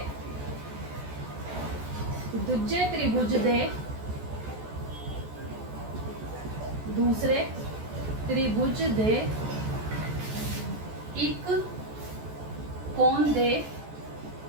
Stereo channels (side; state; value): left; late; 14 ms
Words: ਦੂਜੇ ਤ੍ਰਿਭੁਜ ਦੇ ਦੂਸਰੇ ਤ੍ਰਿਭੁਜ ਦੇ ਇੱਕ ਕੋਣ ਦੇ